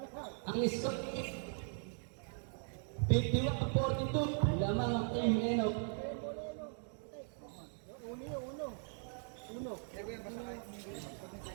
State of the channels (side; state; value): left; silent; 52 dB below the other